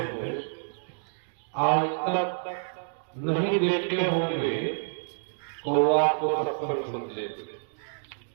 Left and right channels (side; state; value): left; silent; digital silence